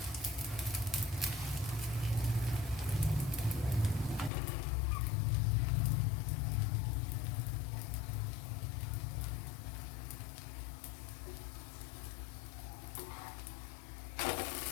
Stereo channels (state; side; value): drops out; right; at 4.3 s